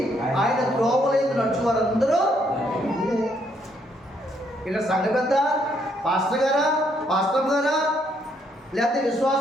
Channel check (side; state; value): both; normal; correlation 0.71